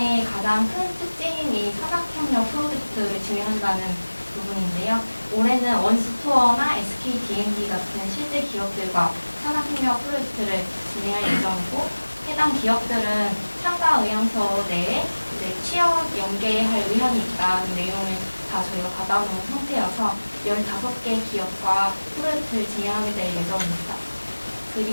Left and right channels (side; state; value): both; inverted; correlation -1.00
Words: 가장 큰 특징이 산학협력 프로젝트를 진행한다는 부분인데요. 올해는 원스토어나 SKD&D 같은 실제 기업들과 산학협력 프로젝트를 진행할 예정이고, 해당 기업들은 참가 의향서 내에 이제 취업 연계할 의향이 있다는 내용을 다 저희가 받아놓은 상태여서 15개 기업과 프로젝트를 진행하게 될 예정입니다.